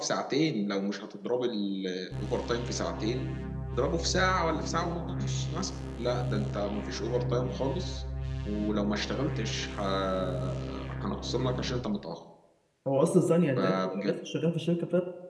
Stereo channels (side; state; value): both; identical; correlation 1.00